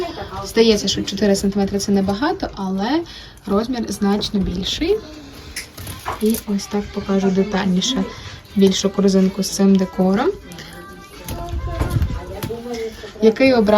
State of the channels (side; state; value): both; identical; correlation 1.00